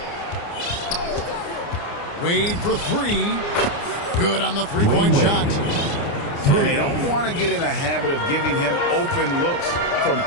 Wade for three. Good on the three-point shot. And they don't want to get in a habit of giving him open looks from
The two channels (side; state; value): right; late; 29 ms